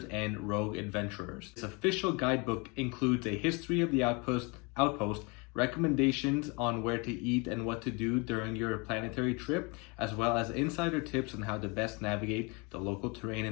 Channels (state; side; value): quieter; right; 29.7 dB